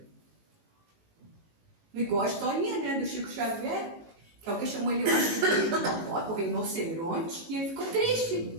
Igual a historinha, né, do Chico Xavier, que alguém chamou ele hoje de rinoceronte, e ele ficou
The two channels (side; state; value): left; late; 18 ms